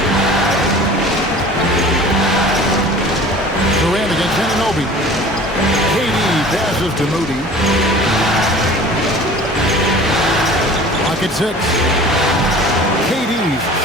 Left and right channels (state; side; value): normal; both; correlation 0.44